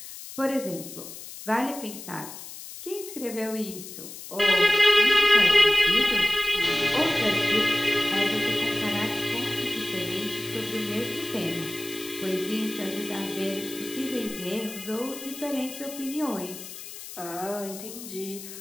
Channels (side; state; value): left; noise; hiss, 12 dB below the sound